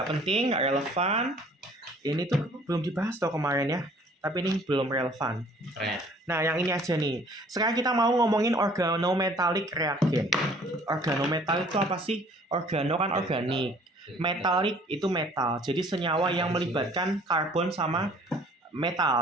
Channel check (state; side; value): normal; both; correlation 0.55